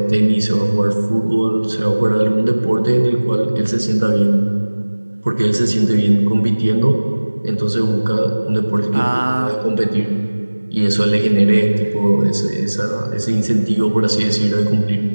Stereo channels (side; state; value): both; inverted; correlation -1.00